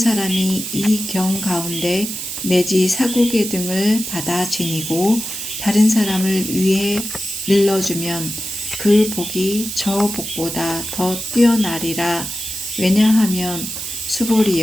이 경 가운데 내지 사국의 등을 받아 지니고 다른 사람을 위해 일러주면 그 복이 저 복보다 더 뛰어나리라. 왜냐하면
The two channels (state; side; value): noise; right; hiss, 6 dB below the sound